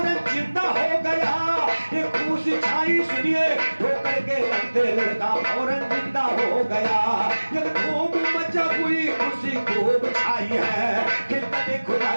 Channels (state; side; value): inverted; both; correlation -1.00